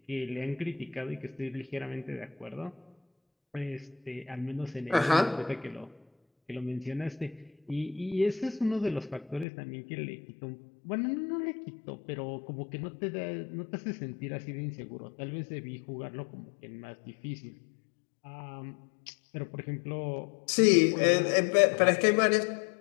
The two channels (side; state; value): right; drops out; at 9.5 s